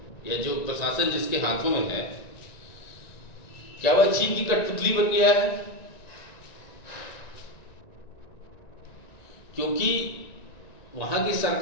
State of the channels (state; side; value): late; right; 1.9 ms